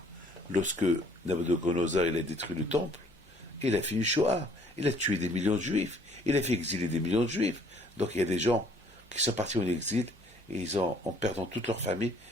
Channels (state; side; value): normal; both; correlation 0.59